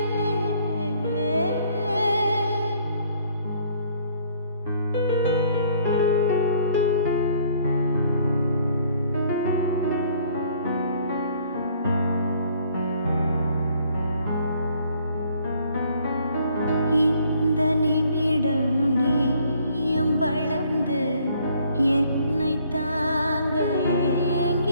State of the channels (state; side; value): inverted; both; correlation -0.62